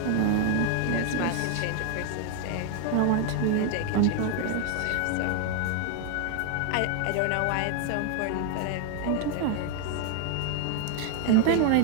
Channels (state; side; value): different; both; correlation 0.01